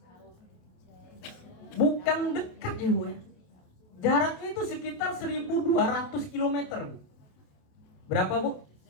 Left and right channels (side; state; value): right; late; 28 ms